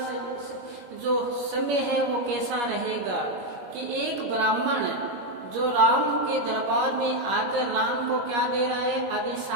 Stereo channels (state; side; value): late; left; 21 ms